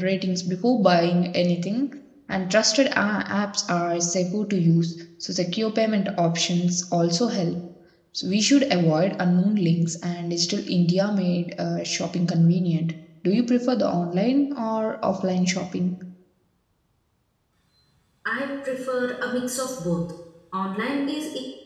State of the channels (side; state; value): both; identical; correlation 1.00